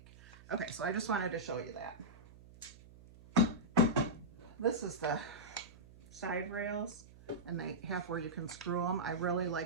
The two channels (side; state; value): right; noise; hum, 21 dB below the sound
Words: Okay, so I just wanted to show you that. This is the side rails, and they have where you can screw them. I really